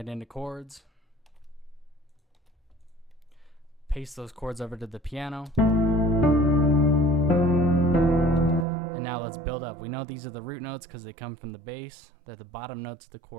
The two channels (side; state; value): left; drops out; at 8.7 s